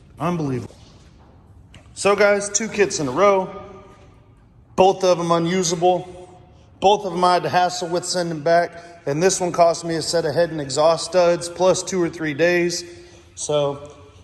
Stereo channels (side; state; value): both; identical; correlation 1.00